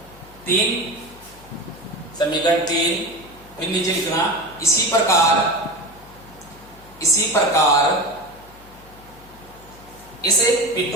3, समीकरण 3, फिर नीचे लिखना इसी प्रकार इसे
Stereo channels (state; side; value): noise; left; hum, 23 dB below the sound